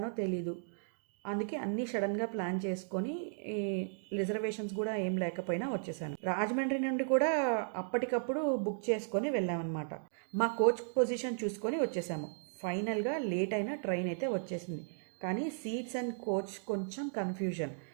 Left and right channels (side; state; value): left; silent; digital silence